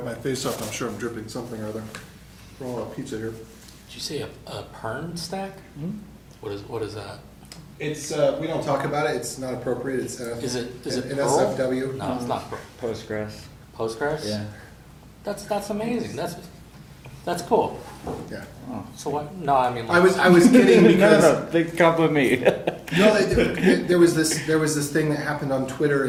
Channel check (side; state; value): both; identical; correlation 1.00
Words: my face off. I'm sure I'm dripping something or other. We're all out pizza here. Did you say a Pern stack? What is that? It's we don't talk about it. It's not appropriate. It's Is it an Perl? SFW. No, it's not Postgres. Postgres. Yeah. That's amazing. That's cool. Yeah. So what? No, I mean. I was kidding because No, big compliment me. no, there was this thing that happened on Twitter,